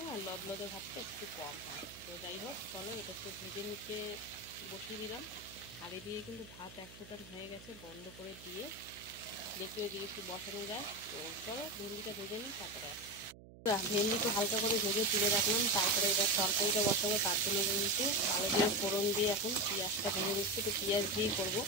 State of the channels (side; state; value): right; noise; hum, 19 dB below the sound